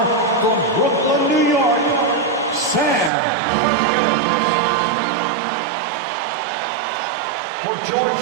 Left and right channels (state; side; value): drops out; left; at 3.1 s